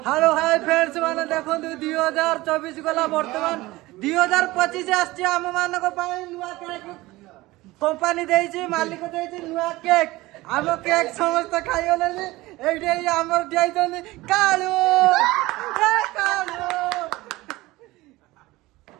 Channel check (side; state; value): left; quieter; 19.4 dB